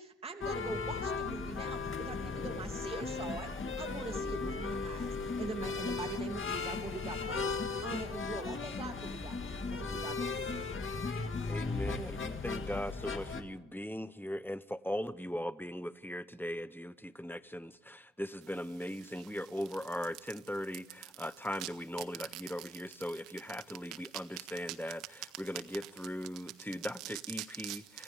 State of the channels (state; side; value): normal; both; correlation 0.66